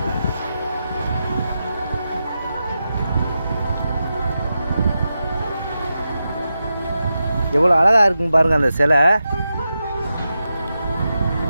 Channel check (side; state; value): both; inverted; correlation -0.89